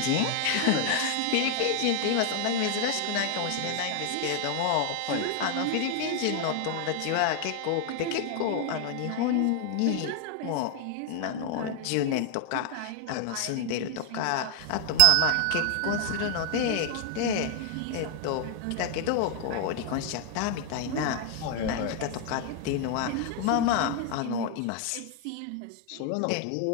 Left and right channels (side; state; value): both; different; correlation 0.00